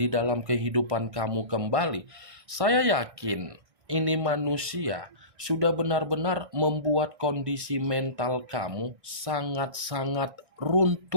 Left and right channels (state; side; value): late; left; 1.6 ms